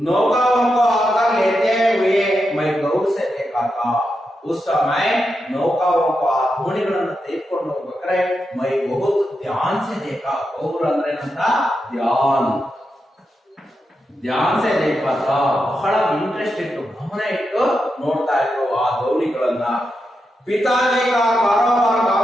को आकर लेते हुए मैं गौर से देखा था. उस समय नौकाओं को ಆ ದೋಣಿಗಳನ್ನು ತೆಗೆದುಕೊಂಡು ಹೋಗ್ಬೇಕಾದ್ರೆ ಮೈ ಬಹುತ್ ಧ್ಯಾನ್ ಸೆ देखा. ಗೌರ್ ಅಂದ್ರೆ ಏನಂತ? ಧ್ಯಾನ್ ಸೆ देखा था. ಬಹಳ ಇಂಟ್ರೆಸ್ಟ್ ಇಟ್ಟು ಗಮನ ಇಟ್ಟು ನೋಡ್ತಾ ಇದ್ರು ಆ ದೋಣಿಗಳನ್ನ. पिताजी का कारोबार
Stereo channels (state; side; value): normal; both; correlation 0.87